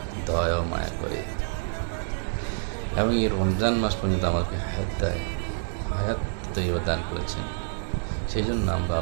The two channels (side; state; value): left; silent; digital silence